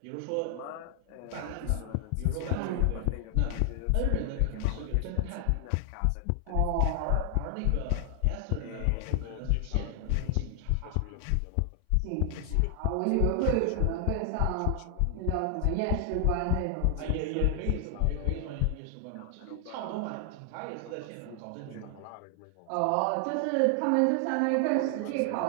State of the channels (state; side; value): different; both; correlation 0.00